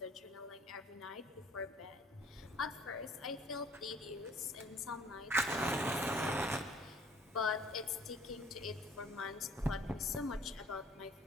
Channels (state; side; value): normal; both; correlation 0.56